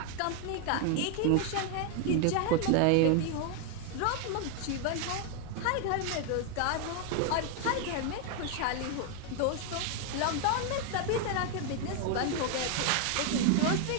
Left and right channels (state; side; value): different; both; correlation 0.00